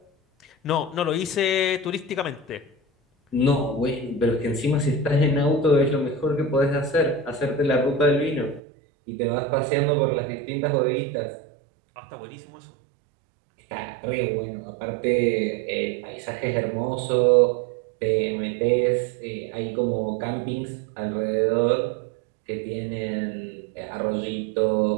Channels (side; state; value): left; drops out; at 8.6 s